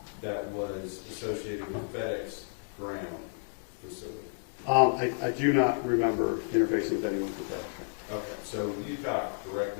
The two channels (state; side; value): silent; right; 57 dB below the other